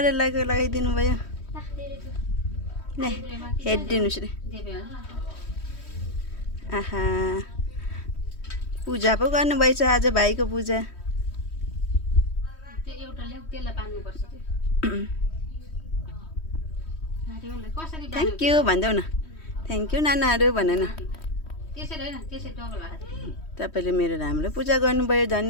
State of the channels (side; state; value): right; late; 3.1 ms